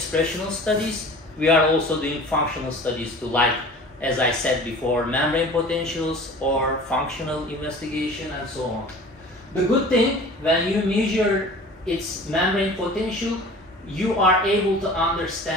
studies, we are also doing functional studies to, like, as I said before, membrane potentials or functional investigation and so on. The good thing, when you measure its membrane potential, you are able to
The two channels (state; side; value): normal; both; correlation 0.42